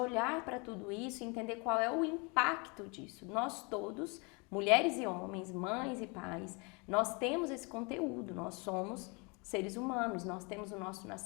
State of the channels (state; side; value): quieter; right; 31.0 dB